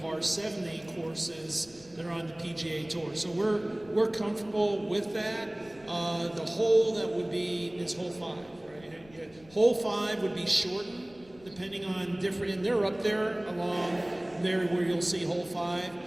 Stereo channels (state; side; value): noise; left; rumble, 25 dB below the sound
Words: 70 courses that are on the PGA Tour. So we're comfortable with that. The hole that would be is hole 5, right? Hole 5 would be shortened depending on different, and they're up there along there where you'll see hole 5.